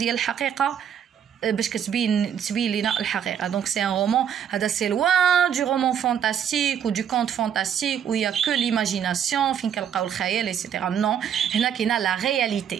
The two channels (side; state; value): left; quieter; 8.7 dB